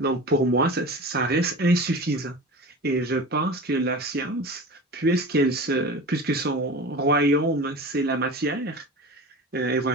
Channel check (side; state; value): both; normal; correlation 0.33